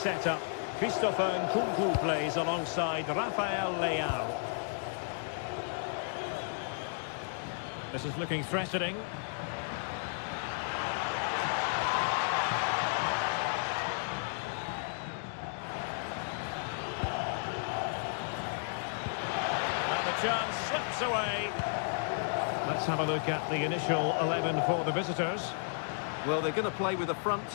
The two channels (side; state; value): right; silent; digital silence